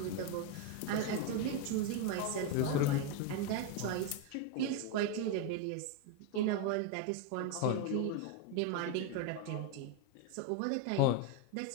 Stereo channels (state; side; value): different; both; correlation 0.02